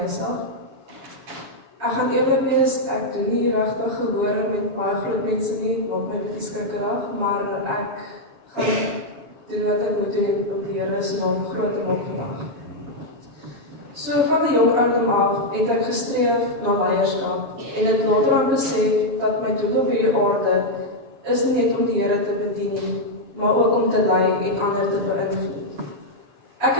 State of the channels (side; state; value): left; late; 7.2 ms